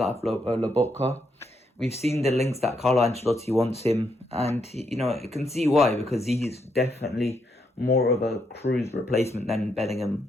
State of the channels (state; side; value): normal; both; correlation 0.78